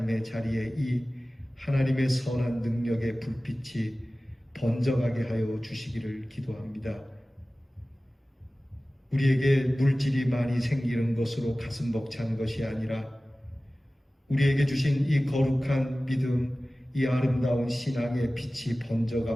자리에 이 하나님의 선한 능력의 불빛이 번져가게 하여 주시기를 기도합니다. 우리에게 물질이 많이 생기는 것으로 가슴 벅찬 것이 아니라 우리에게 주신 이 거룩한 믿음, 이 아름다운 신앙의 빛이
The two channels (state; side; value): normal; both; correlation 0.97